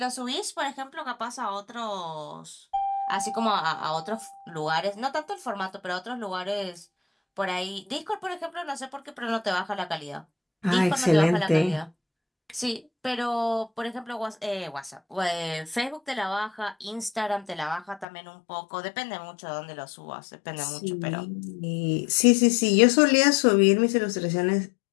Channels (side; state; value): right; drops out; at 18.1 s